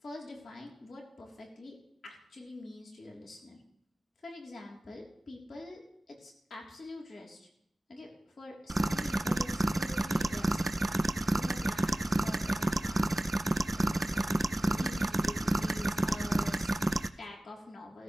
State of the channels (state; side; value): normal; both; correlation 0.96